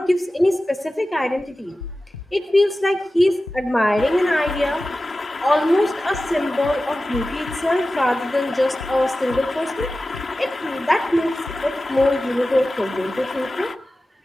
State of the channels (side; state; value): both; normal; correlation 0.95